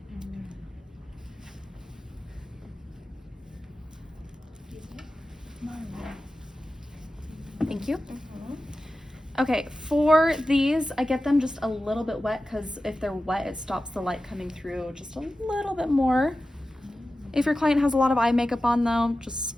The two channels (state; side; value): normal; both; correlation 0.94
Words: Thank you. Okay, for these, I get them just a little bit wet because if they're wet, it stops the light coming through just a little bit more. If your client has a lot of eye makeup on though, just